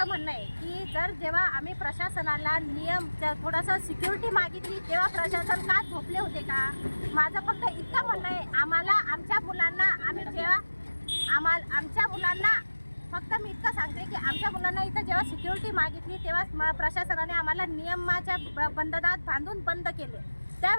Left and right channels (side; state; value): both; inverted; correlation -1.00